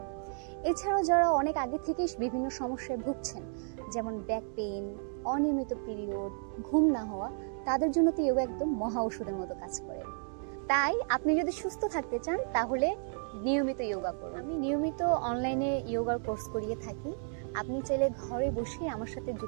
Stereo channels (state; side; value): silent; left; 56 dB below the other